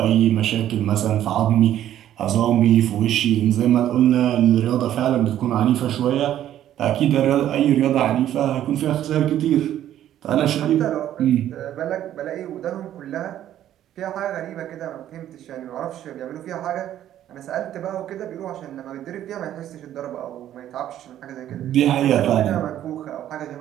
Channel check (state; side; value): quieter; left; 11.8 dB